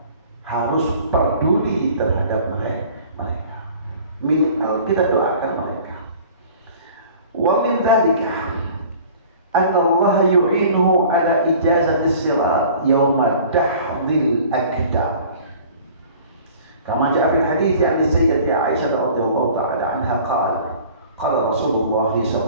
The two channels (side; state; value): both; inverted; correlation -0.47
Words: harus peduli terhadap mereka. Minimal kita doakan mereka. Wa min dzalika anna Allah yu'inuhu ala ijazati sirat yawma dahdil akdam. Kama jaa fil hadits an Sayyidati Aisyah radhiyallahu ta'ala anha qala Rasulullah